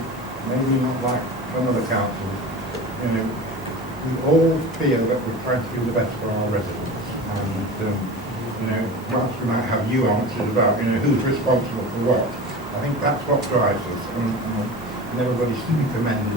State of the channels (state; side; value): normal; both; correlation 0.32